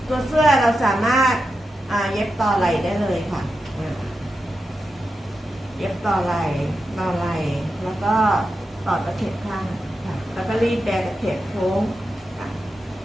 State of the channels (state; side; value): normal; both; correlation 0.89